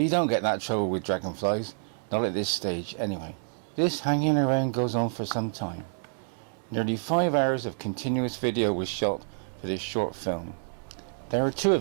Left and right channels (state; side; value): silent; left; digital silence